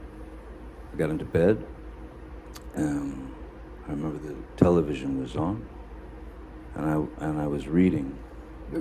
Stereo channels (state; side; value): identical; both; correlation 1.00